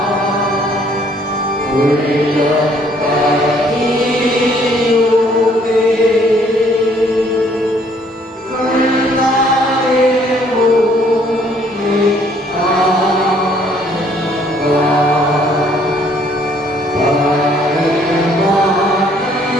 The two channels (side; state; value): both; normal; correlation 0.63